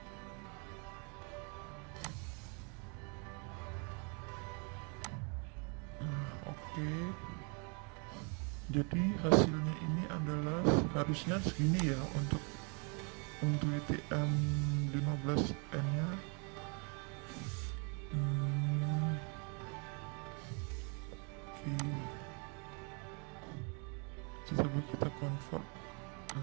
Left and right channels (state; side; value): quieter; left; 35.7 dB